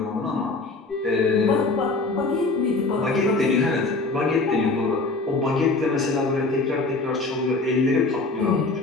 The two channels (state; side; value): quieter; right; 3.5 dB